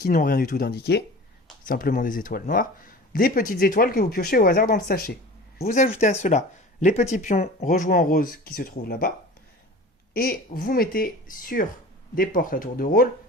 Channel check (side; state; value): both; normal; correlation 0.39